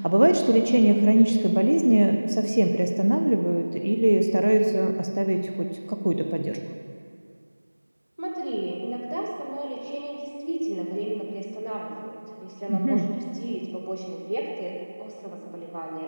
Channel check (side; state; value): both; inverted; correlation -1.00